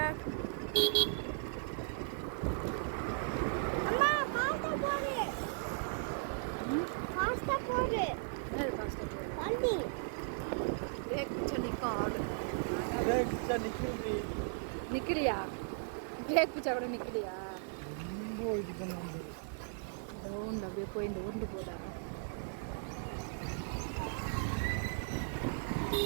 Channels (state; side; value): silent; left; digital silence